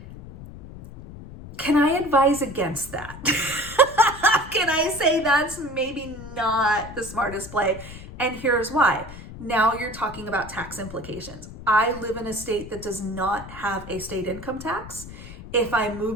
Can I advise against that? Can I say that's maybe not the smartest play? And here's why. Now you're talking about tax implications. I live in a state that does not have a state income tax. If I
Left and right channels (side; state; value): left; noise; rumble, 14 dB below the sound